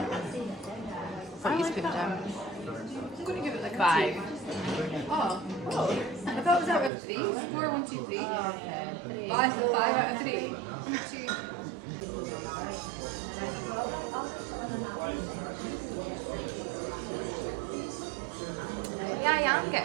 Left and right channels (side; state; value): left; drops out; at 6.9 s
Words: What are you putting down? I'm going to give it like 5. Oh. I thought it was out of 3. 4, 1, 2, 3. Oh, okay. 5 out of 3. 2. Yeah, I'm